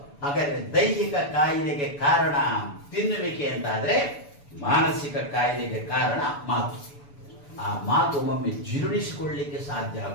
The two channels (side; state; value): right; late; 7.0 ms